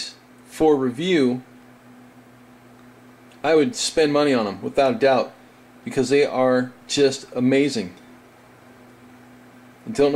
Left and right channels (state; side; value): identical; both; correlation 1.00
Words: for review, I would spend money on them without a doubt because they are just amazing. I don't